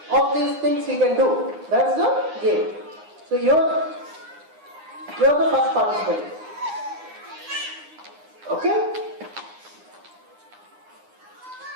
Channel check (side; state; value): left; late; 9.7 ms